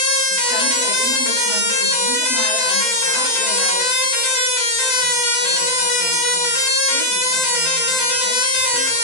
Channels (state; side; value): late; right; 7.7 ms